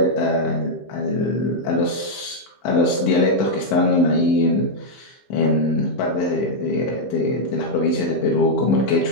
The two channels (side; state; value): right; late; 15 ms